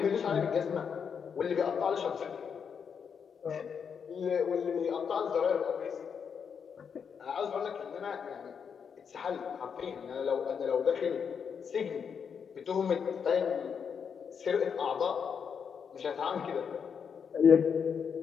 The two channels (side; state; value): right; quieter; 6.8 dB